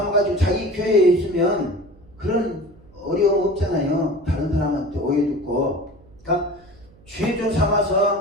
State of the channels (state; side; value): noise; right; hum, 26 dB below the sound